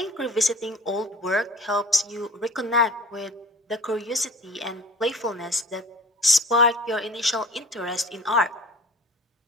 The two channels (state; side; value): normal; both; correlation 0.43